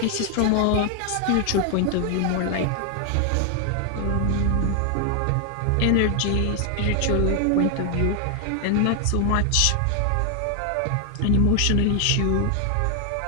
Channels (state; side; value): different; both; correlation 0.00